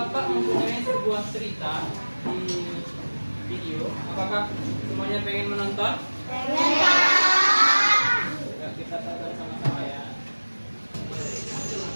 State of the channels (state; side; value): inverted; both; correlation -1.00